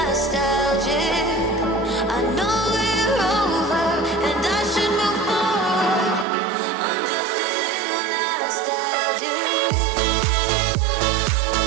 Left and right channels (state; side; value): drops out; left; at 6.2 s